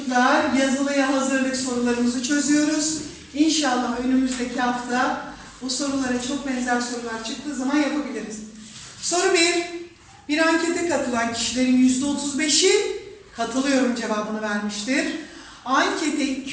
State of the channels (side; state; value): both; identical; correlation 1.00